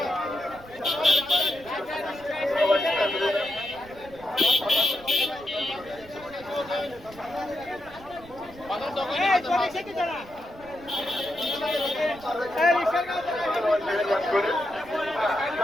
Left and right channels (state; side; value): noise; right; rumble, 21 dB below the sound